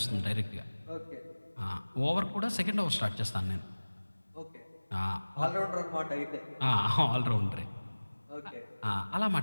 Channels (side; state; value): both; inverted; correlation -1.00